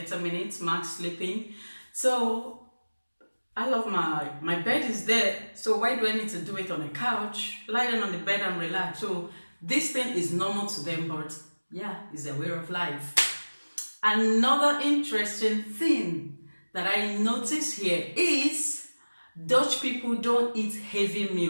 minutes max sleeping. So I love my bed is there. So why do I need to do it on a couch? Lie down on the bed and relax. So this thing is normal to them, but yeah, it's a way of life. Another interesting thing that I notice here is Dutch people don't eat heavy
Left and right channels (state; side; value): inverted; both; correlation -1.00